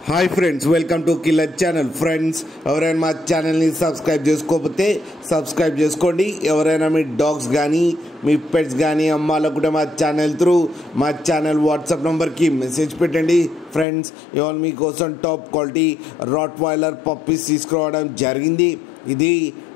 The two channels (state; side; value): drops out; right; at 13.9 s